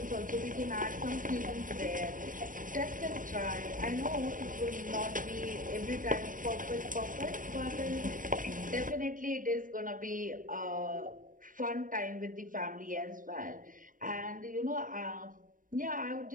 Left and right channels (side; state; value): left; late; 0.39 ms